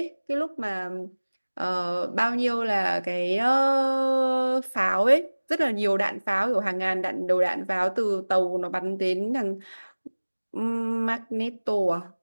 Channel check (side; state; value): both; inverted; correlation -1.00